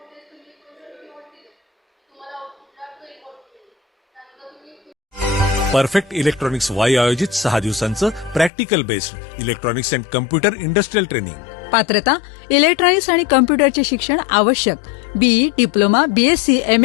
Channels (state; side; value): drops out; right; at 8.5 s